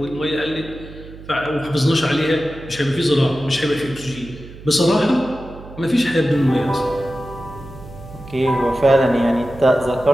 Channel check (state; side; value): noise; right; hum, 16 dB below the sound